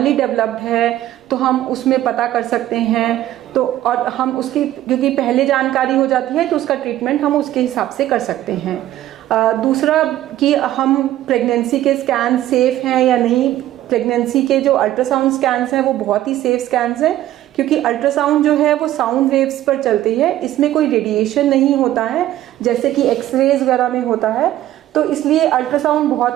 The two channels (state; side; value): quieter; left; 13.7 dB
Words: डेवलप्ड है तो हम उसमें पता कर सकते हैं. तो और हम उसकी, क्योंकि पहले जानकारी हो जाती है तो उसका ट्रीटमेंट हम उसके हिसाब से कर सकते हैं. दूसरा कि हम प्रेगनेंसी के स्कैन सेफ हैं या नहीं. प्रेगनेंसी के जो अल्ट्रासाउंड स्कैन्स हैं वो बहुत ही सेफ स्कैन्स हैं, क्योंकि अल्ट्रासाउंड जो है वो साउंड वेव्स पर चलती है. इसमें कोई रेडिएशन नहीं होता है जैसे कि एक्सरेज वगैरह में होता है. तो इसलिए अल्ट्रासाउंड